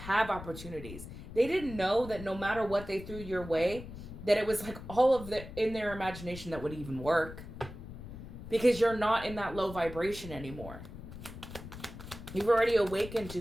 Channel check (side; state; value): left; noise; rumble, 12 dB below the sound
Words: opportunities. They didn't know that no matter what they threw your way, that it was like all of the in their imagination that would even work, because you're not in that low vibration anymore. You've already awakened